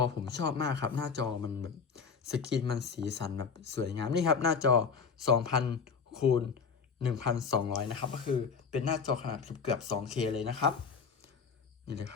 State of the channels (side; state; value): right; quieter; 5.8 dB